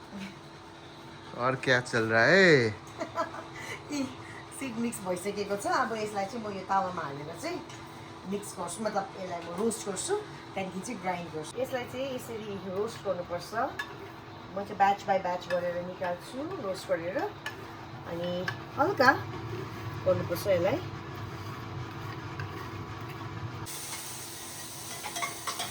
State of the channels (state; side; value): identical; both; correlation 1.00